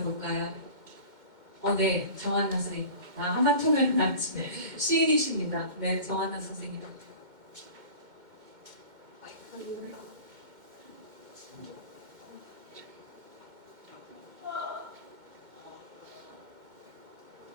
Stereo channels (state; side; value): late; left; 2.1 ms